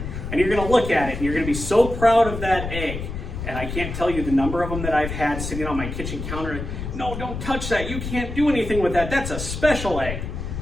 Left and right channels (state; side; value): noise; left; rumble, 6 dB below the sound